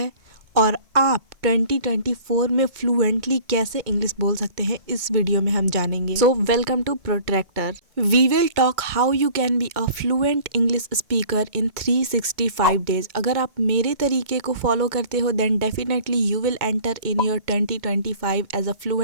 और आप 2024 में फ्लुएंटली कैसे इंग्लिश बोल सकते हैं, इस वीडियो में हम जानेंगे। So welcome to protractor. We will talk how you can be a fluent English speaker in 365 days. अगर आप मेरे तरीके को फॉलो करते हो then definitely you will enter in your 2025 as a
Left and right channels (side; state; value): left; late; 2.2 ms